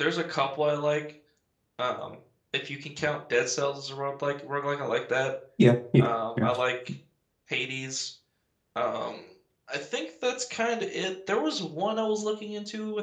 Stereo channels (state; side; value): identical; both; correlation 1.00